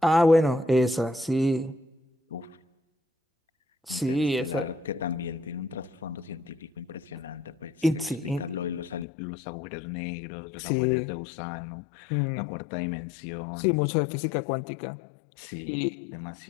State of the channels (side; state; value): right; drops out; at 9.1 s